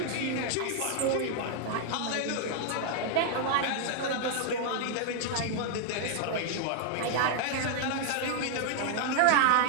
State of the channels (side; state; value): both; different; correlation 0.00